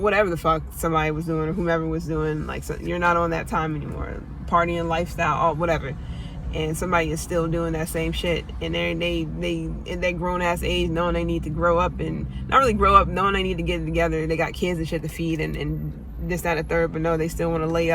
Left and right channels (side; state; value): both; identical; correlation 1.00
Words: whatever the fuck somebody was doing or whomever was doing. Like, so you're not on that time anymore. Partying lifestyle, all whatever. And somebody is still doing that same shit, and they in that grown ass age, knowing they need to grow up, and not really grow up, knowing they need to get it together. They got kids and shit to feed and this, that, and the third, but no, they still want to lay